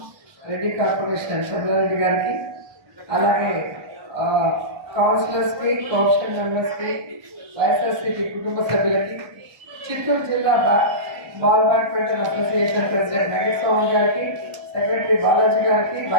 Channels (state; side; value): late; left; 1.2 ms